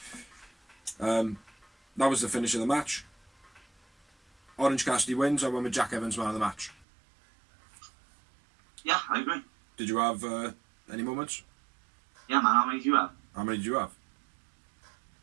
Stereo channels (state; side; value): drops out; left; at 6.8 s